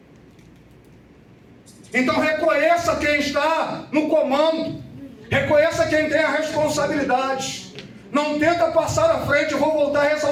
Então reconheça quem está no comando. Reconheça quem tem a responsabilidade. Não tenta passar à frente. Eu vou voltar a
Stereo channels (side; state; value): both; identical; correlation 1.00